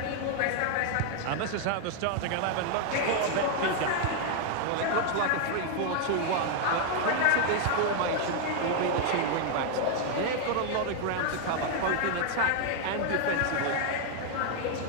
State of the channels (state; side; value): different; both; correlation 0.00